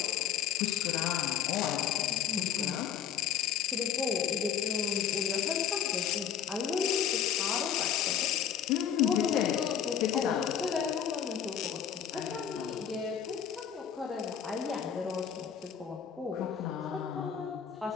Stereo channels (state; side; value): quieter; right; 8.8 dB